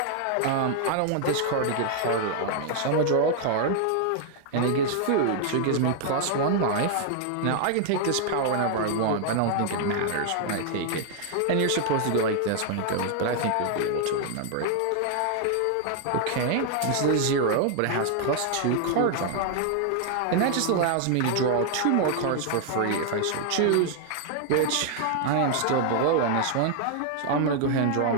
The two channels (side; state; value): both; different; correlation 0.00